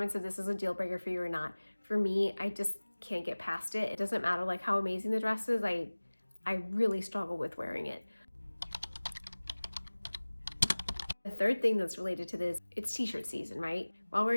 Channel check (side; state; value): both; inverted; correlation -1.00